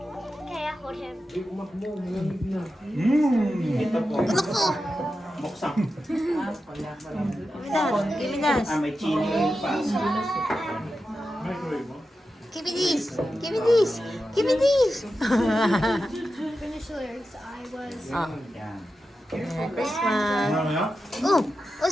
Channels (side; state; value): both; normal; correlation 0.91